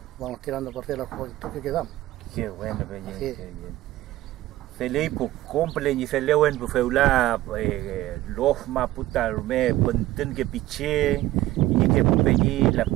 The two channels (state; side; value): quieter; left; 15.9 dB